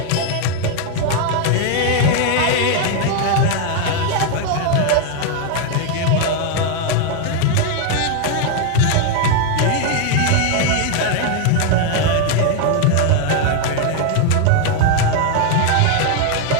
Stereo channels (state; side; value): different; both; correlation 0.00